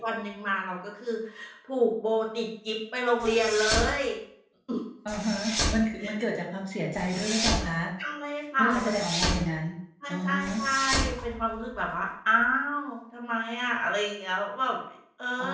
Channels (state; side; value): identical; both; correlation 1.00